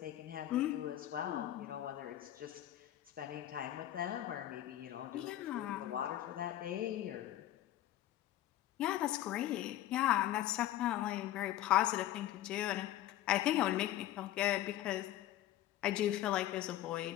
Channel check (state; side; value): quieter; right; 13.5 dB